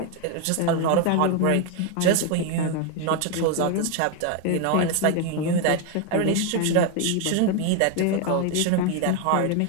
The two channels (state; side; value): different; both; correlation 0.01